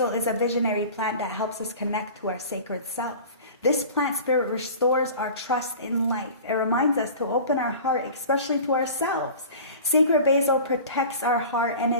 is a visionary plant that helps us connect to our sacred self. This plant spirit restores our trust in life. It reminds us to open our heart, especially to ourselves. Sacred basil protects our heart and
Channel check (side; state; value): both; inverted; correlation -0.39